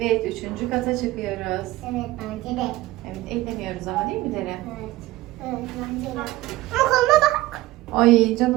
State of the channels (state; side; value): quieter; left; 17.9 dB